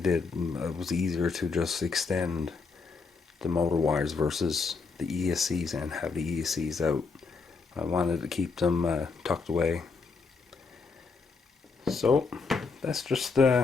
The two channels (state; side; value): quieter; right; 4.7 dB